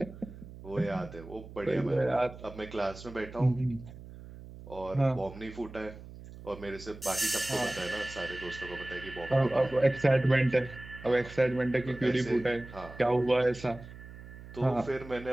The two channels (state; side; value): noise; right; hum, 15 dB below the sound